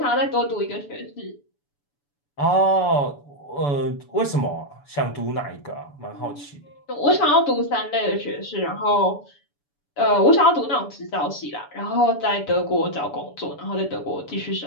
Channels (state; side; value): late; right; 7.0 ms